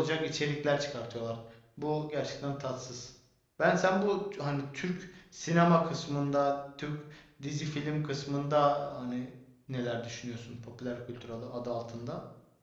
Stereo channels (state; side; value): identical; both; correlation 1.00